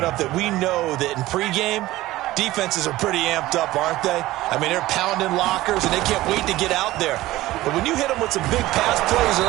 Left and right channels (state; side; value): quieter; left; 17.0 dB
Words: that we know that in pregame, defenses are pretty amped up, aren't they? I mean, they're pounding lockers, and they can't wait to get out there. But when you hit them with some big pass plays